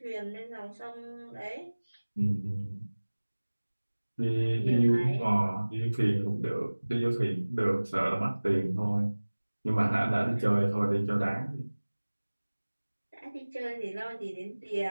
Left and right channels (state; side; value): inverted; both; correlation -1.00